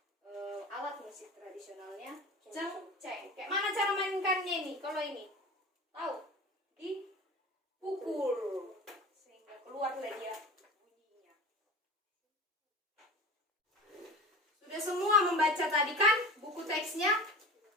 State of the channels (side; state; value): both; normal; correlation 0.33